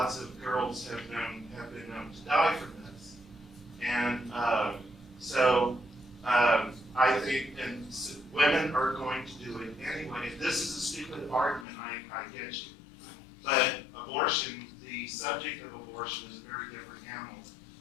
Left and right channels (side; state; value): right; drops out; at 11.7 s